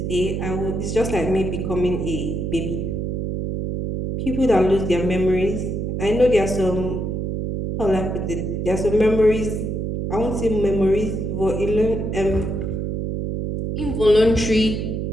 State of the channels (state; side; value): noise; right; hum, 2 dB below the sound